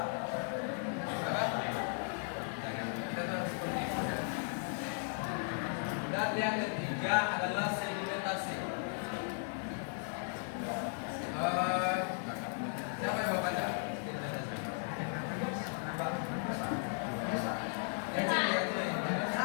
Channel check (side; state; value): right; silent; 53 dB below the other